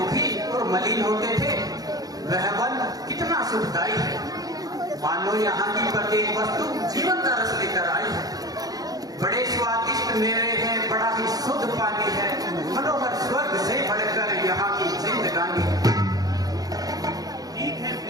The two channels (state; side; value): late; left; 0.18 ms